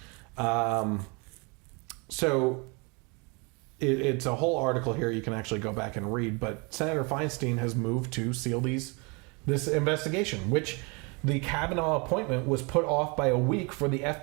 It's a whole article here you can actually go back and read, but Senator Feinstein has moved to seal this investigation, which the Kavanaugh appointment was put off by a week for the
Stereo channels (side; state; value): left; quieter; 30.5 dB